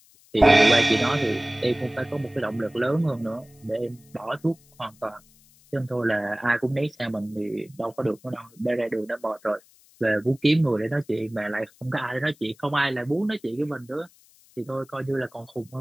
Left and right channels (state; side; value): noise; left; hiss, 29 dB below the sound